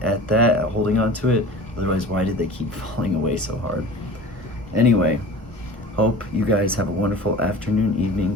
at that, at holding on to it. Otherwise, why did they keep falling away so hard? Anyway, hope you guys have a wonderful afternoon,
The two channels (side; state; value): both; normal; correlation 0.38